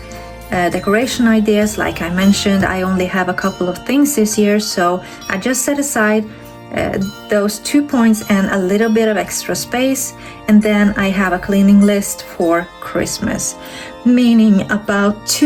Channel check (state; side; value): identical; both; correlation 1.00